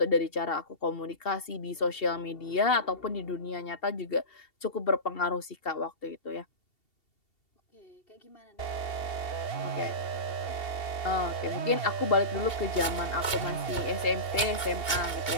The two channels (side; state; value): right; late; 2.7 ms